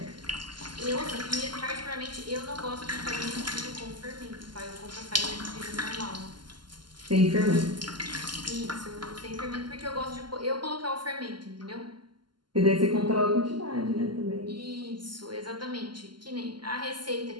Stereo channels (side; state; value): left; late; 0.71 ms